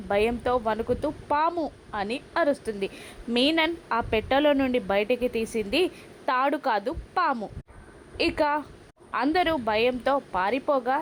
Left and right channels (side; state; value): both; identical; correlation 1.00